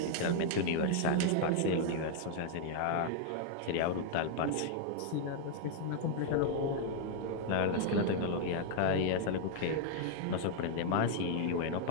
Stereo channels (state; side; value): different; both; correlation 0.00